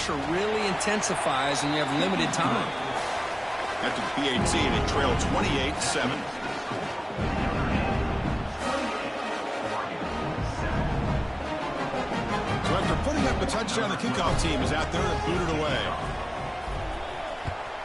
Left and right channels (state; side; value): identical; both; correlation 1.00